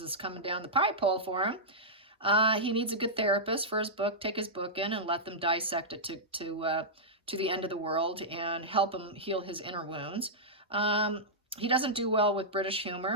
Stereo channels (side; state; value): both; normal; correlation -0.11